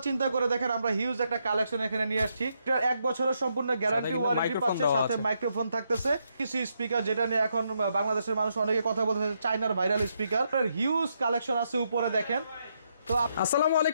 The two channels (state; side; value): inverted; both; correlation -0.79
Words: চিন্তা করে দেখেন আমরা হিউজ একটা কালেকশন এখানে নিয়ে আসছি। এটার 1 বছরের সম্পূর্ণ গ্যারান্টি ওয়ারেন্টি পাচ্ছে, সাথে মাইক্রোফোন থাকতেছে। কিছু স্পিকার যেটা নিয়ে এখন বাংলাদেশের মানুষ অনেকে কথা বলতেছে, চায়নার ভাইরাল স্পিকার, হিউজ কালেকশন আছে উপরে দেখেন। তো আসসালামু